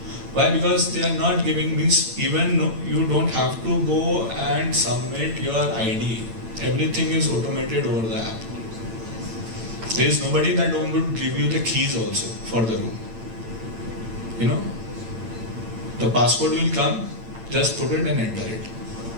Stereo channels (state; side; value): late; left; 8.9 ms